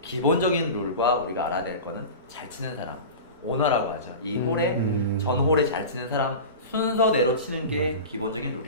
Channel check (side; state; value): both; inverted; correlation -0.30